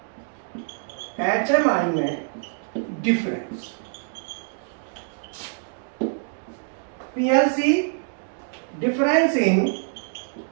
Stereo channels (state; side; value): silent; left; digital silence